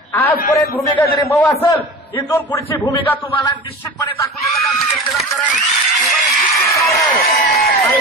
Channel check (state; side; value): normal; both; correlation 0.33